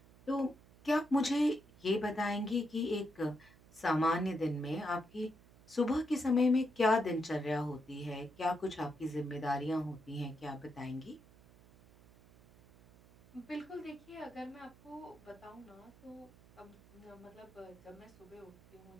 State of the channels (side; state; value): right; noise; hum, 24 dB below the sound